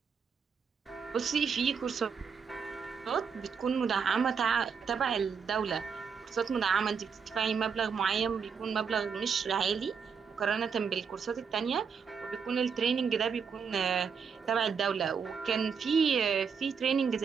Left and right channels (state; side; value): quieter; left; 6.2 dB